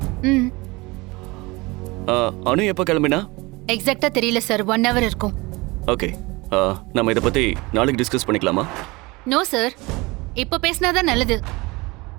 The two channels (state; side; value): quieter; left; 23.6 dB